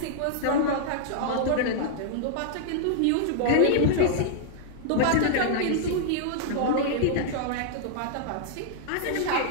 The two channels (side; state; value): both; different; correlation -0.01